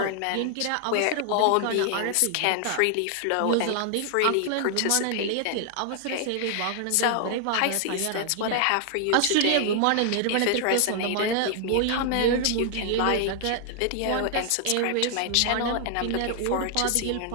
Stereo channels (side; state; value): both; different; correlation 0.00